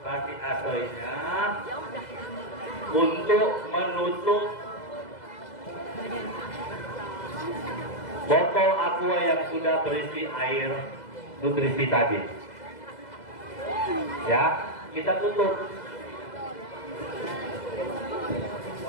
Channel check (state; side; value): late; right; 2.0 ms